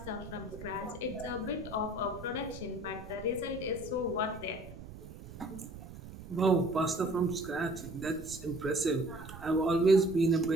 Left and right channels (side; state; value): right; noise; rumble, 14 dB below the sound